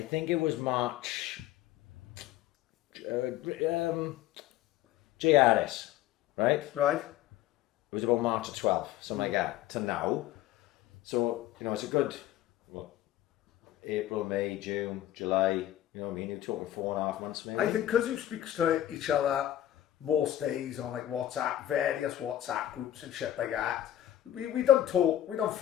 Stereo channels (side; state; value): right; quieter; 12.9 dB